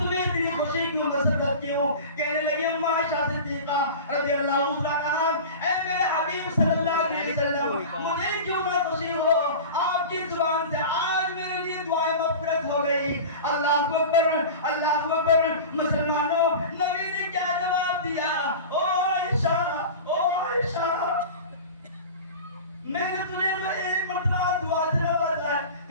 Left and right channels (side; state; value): both; inverted; correlation -0.33